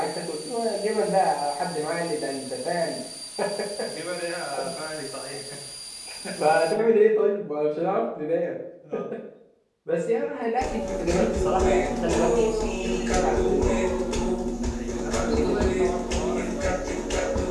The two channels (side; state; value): both; identical; correlation 1.00